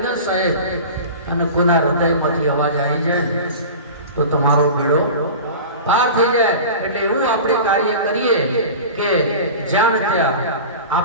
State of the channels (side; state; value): both; inverted; correlation -0.34